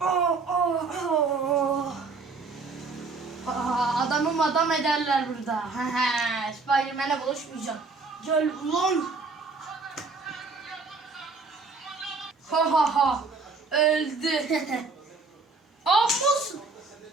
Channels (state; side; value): quieter; left; 4.1 dB